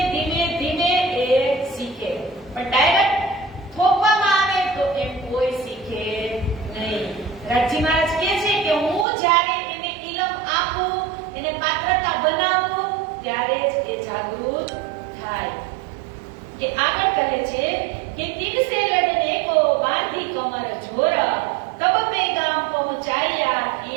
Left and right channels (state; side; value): drops out; left; at 9.1 s